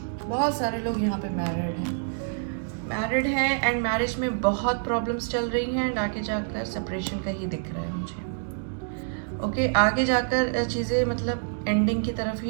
बहुत सारे लोग यहाँ पे मैरिड हैं एंड मैरिज में बहुत प्रॉब्लम्स चल रही हैं, एंड आगे जाकर सेपरेशन का ही दिख रहा है मुझे। ओके, आगे जाकर चीज़ें मतलब एंडिंग की तरफ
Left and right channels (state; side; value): silent; left; digital silence